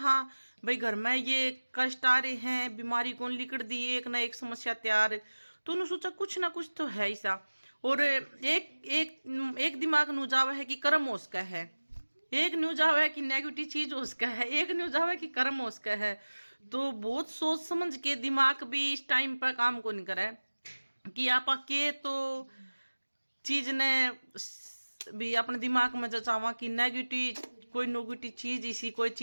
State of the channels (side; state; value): both; inverted; correlation -1.00